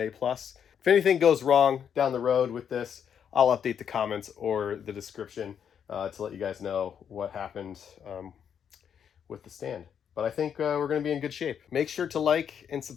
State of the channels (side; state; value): right; quieter; 8.1 dB